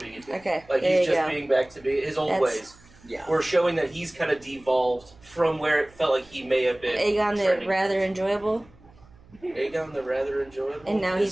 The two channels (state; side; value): noise; right; hum, 26 dB below the sound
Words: being a dick. Okay, Like there he's you just go. being back to be his old That's- ways. Yeah. We're showing that he's kind of devolved from where it felt like he may have been. Aegon the trending. rather enjoyable, Aegon the rather enjoyable. and now